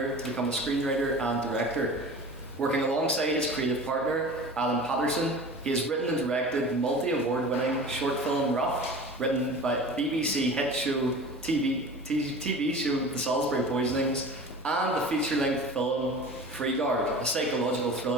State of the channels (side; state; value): both; normal; correlation 0.37